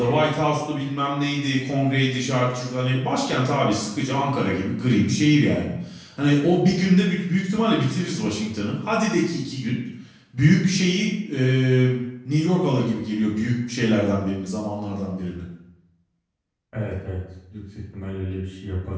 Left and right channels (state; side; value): identical; both; correlation 1.00